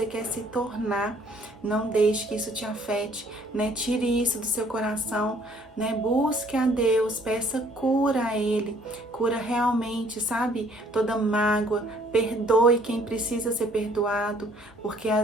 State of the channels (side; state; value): both; normal; correlation 0.60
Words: quer se tornar. Não deixe que isso te afete, né? Tire isso do seu coração, né? Busque a Deus, peça cura a Ele, cura realmente, sabe? Toda mágoa, perdoe quem precisa ser perdoado, porque